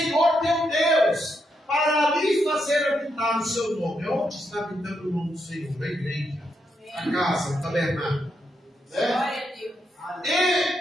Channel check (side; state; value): both; normal; correlation 0.81